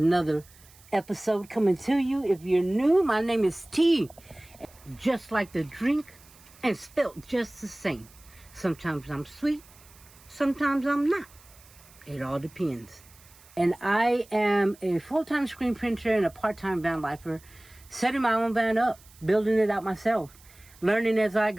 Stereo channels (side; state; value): right; noise; hiss, 25 dB below the sound